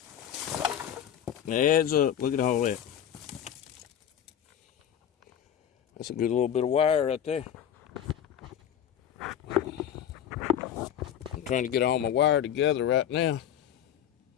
It adds up. Look at all that. That's a good little bit of wire right there. I'm trying to get all my wire together right now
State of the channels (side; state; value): right; quieter; 9.8 dB